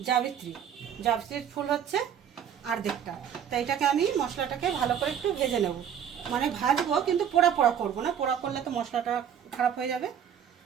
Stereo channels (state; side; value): quieter; left; 8.8 dB